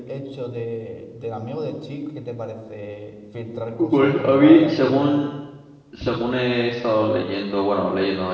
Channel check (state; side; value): identical; both; correlation 1.00